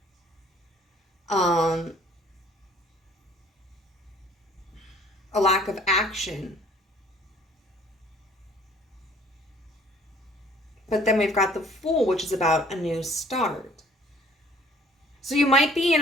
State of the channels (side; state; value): both; normal; correlation 0.56